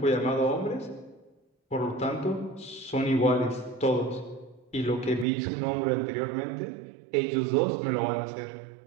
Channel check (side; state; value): left; drops out; at 5.2 s